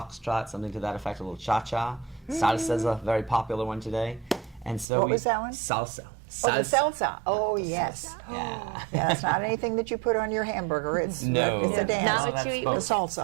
something to that effect, a little cha-cha. Salsa is a very popular one today. And so What was that one? Salsa. Oh, the salsa. Oh, yes. Yeah. Yeah, that's not anything that you put on your hamburger. It's No. it's a dance. Not No, what you that's eat. The both.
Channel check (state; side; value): drops out; left; at 4.9 s